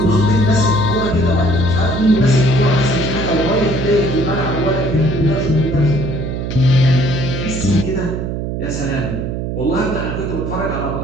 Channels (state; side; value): noise; right; hum, 4 dB below the sound